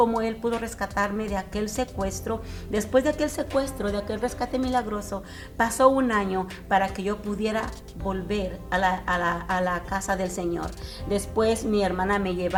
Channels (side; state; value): both; identical; correlation 1.00